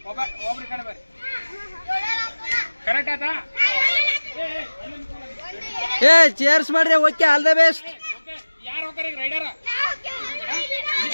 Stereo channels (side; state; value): both; inverted; correlation -1.00